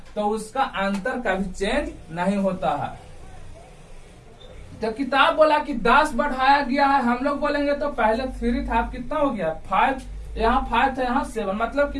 तो उसका अंतर कभी चेंज नहीं होता है। तो किताब बोला कि 10 बढ़ाया गया है, हम लोग बोलेंगे तो पहले 3 था, अब कितना हो गया 5, यहाँ 5 था, यहाँ 7, मतलब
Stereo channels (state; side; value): identical; both; correlation 1.00